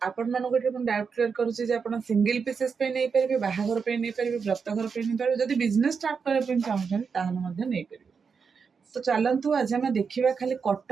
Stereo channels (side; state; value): left; quieter; 5.7 dB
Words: आपण मानक डाउट क्लियर करुच्ची जे आपण सिंगल पीसेस पे नहीं पारे, बाहाघर पे नहीं पारे, व्रतघर पे नहीं पारे, जदि बिजनेस स्टार्ट करबा चाहूछन ताहले मध्ये नहीं पारे। तो चलतु आज आम देखा खाली